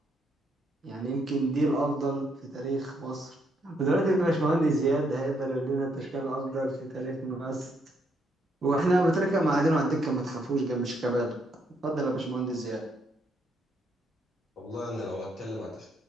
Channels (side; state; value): both; normal; correlation 0.74